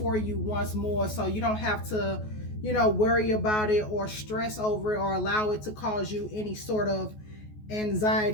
you once more, so you don't have to worry about it or stress over it or allow it to cause you any sort of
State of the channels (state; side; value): late; right; 14 ms